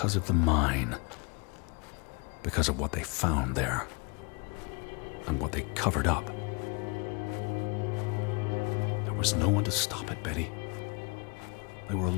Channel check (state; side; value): quieter; right; 31.7 dB